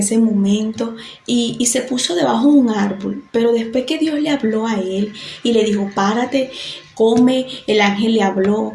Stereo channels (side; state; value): both; identical; correlation 1.00